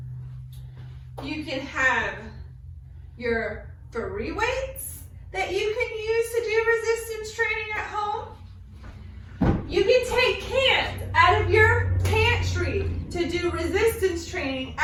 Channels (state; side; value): identical; both; correlation 1.00